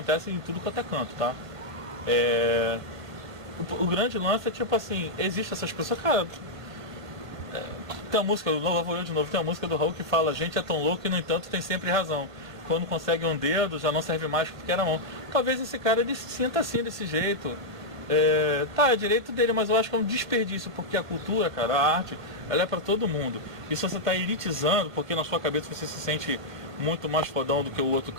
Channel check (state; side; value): late; left; 1.5 ms